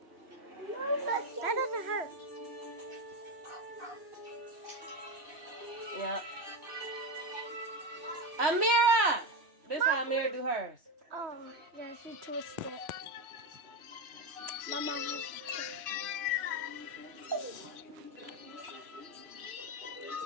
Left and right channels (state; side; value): late; left; 3.1 ms